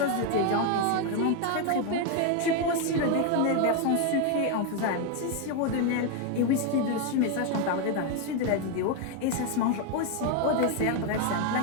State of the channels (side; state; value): both; different; correlation 0.01